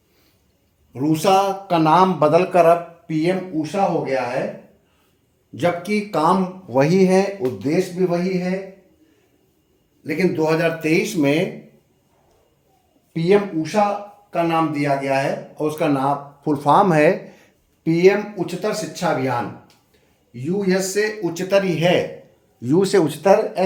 रूसा का नाम बदलकर अब पीएम ऊषा हो गया है, जबकि काम वही है, उद्देश्य भी वही है, लेकिन 2023 में पीएम ऊषा का नाम दिया गया है और उसका नाम फुल फॉर्म है पीएम उच्चतर शिक्षा अभियान। यू एस से उच्चतर ही है, यू से उच्चतर,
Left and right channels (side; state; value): both; identical; correlation 1.00